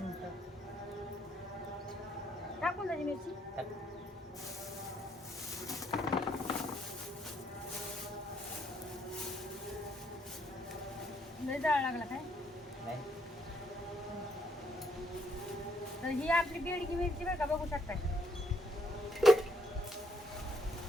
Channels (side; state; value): both; normal; correlation 0.71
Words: टाकून द्यायची मिरची. लय जाळ लागला काय तर ही आपली बेडकी मिरची बरं का बघू शकता